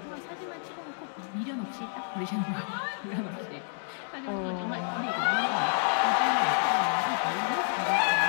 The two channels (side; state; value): right; silent; digital silence